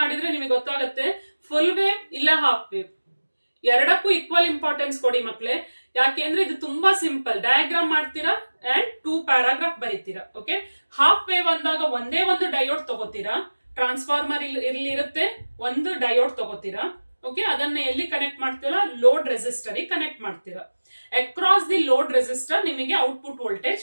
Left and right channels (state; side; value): inverted; both; correlation -1.00